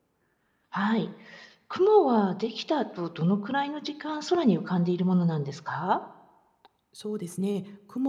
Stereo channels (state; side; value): identical; both; correlation 1.00